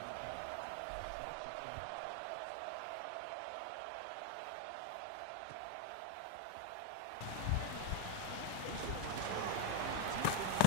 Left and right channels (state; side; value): different; both; correlation 0.01